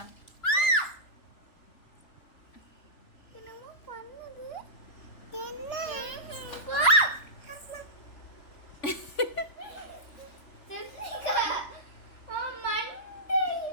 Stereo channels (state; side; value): late; right; 3.4 ms